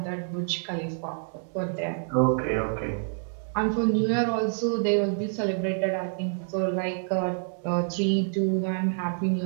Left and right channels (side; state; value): left; silent; digital silence